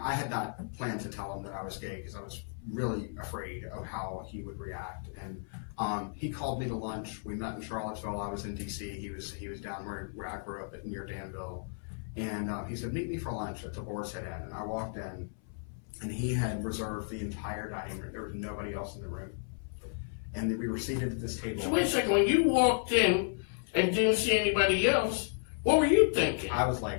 I had not planned to tell him that I was gay because I was really afraid of how he would react. And he called me to lunch. We met in Charlottesville. I was in DC. He was down where I grew up near Danville. And he said, meet me for lunch at the Boar's Head Inn. And I walked in, and he had reserved the entire dining room. There was nobody else in the room. And we were seated at this table. So wait a second, when you walked in and didn't see anybody else, what were you thinking? I was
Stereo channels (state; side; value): silent; right; 56 dB below the other